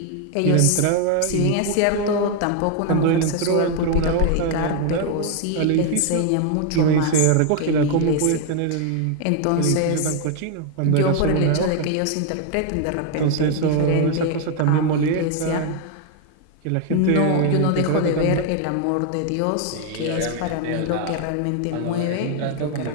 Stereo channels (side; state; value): both; different; correlation 0.00